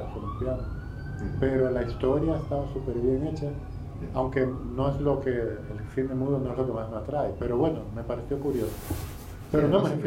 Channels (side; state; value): both; identical; correlation 1.00